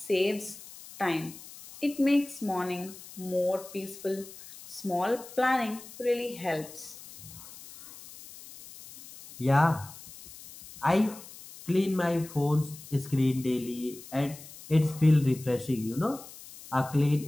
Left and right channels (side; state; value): left; noise; hiss, 17 dB below the sound